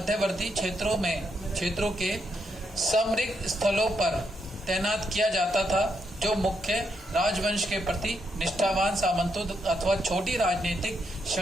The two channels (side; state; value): both; normal; correlation 0.79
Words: क्षेत्रों के समृद्ध स्थलों पर तैनात किया जाता था, जो मुख्य राजवंश के प्रति निष्ठावान सामंतों अथवा छोटी राजनीतिक